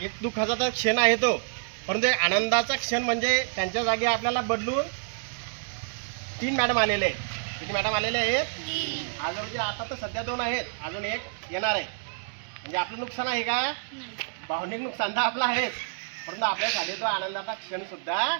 एक दुःखाचा क्षण आहे तो, परंतु आनंदाचा क्षण म्हणजे त्यांच्या जागी आपल्याला बदलून 3 मॅडम आलेले आहेत. किती मॅडम आलेले आहेत? अजून आता तर सध्या 2 आहेत, अजून एक येणार आहे. म्हणजे आपलं नुकसान आहे का? भावनिक नुकसान तर आपलं आहेच, परंतु आपल्यासाठी तो आनंदाचा क्षण सुद्धा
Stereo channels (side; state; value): left; silent; digital silence